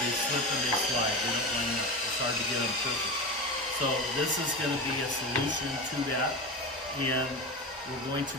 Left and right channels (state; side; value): normal; both; correlation 0.24